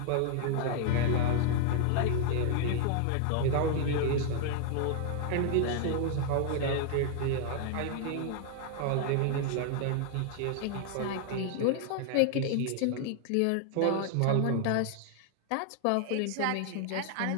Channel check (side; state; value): both; different; correlation 0.00